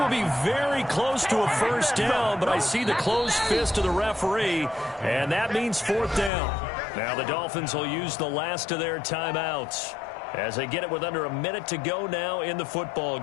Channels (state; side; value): drops out; right; at 6.3 s